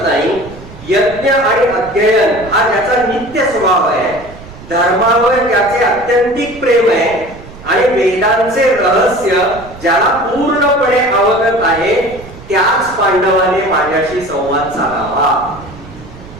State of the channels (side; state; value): right; noise; rumble, 18 dB below the sound